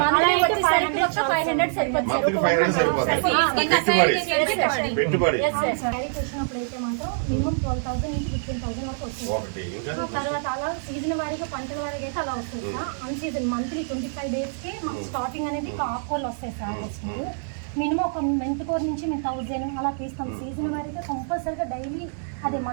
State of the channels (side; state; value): left; silent; digital silence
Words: పెట్టుబడి వచ్చినప్పుడైతే మాత్రం మినిమం 12,000 నుంచి 15,000 వరకు వస్తుంది. తర్వాత అలా సీజన్ వారీగా పంటల వారీగా అయితే అలా వస్తుంది సార్. అన్ సీజన్ మంత్లీ 25 days కి మాకు స్టార్టింగ్ అనేది ఆకుకూరలు వస్తాయి సార్. వస్తుంది మినిమం ఒక మెంతికూర నుంచి మేము 1000 అలా తీస్తాం. సీజన్ వారీగా కంపల్సరీగా డైలీ అదే